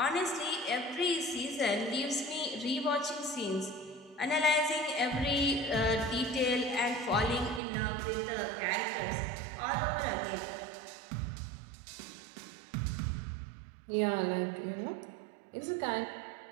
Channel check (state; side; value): drops out; left; at 7.6 s